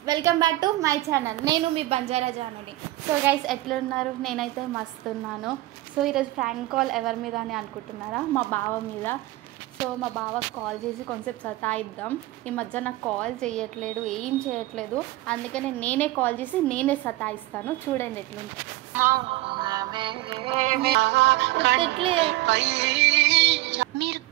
welcome back to my channel. నేను మీ బంజారా జానుని. సో గైస్, ఎట్లున్నారు? నేనైతే మస్తు ఉన్నాను. సో ఈరోజు ఫ్రాంక్ కాల్ ఎవరి మీద అని అనుకుంటున్నారా? మా బావ మీద. సో మా బావకు కాల్ చేసి కొంచెం సతాయిద్దాం. ఈ మధ్య నాకు కాల్ చేయట్లేదు, ఏం చేయట్లేదు. అందుకనే నేనే కాల్ చేసి నేనే సతాయిస్తాను. చూడండి ఎట్లుంటుంది. మీరు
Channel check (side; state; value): left; quieter; 17.7 dB